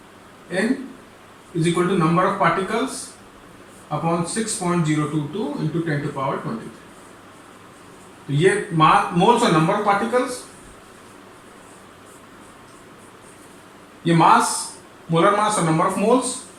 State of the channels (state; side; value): identical; both; correlation 1.00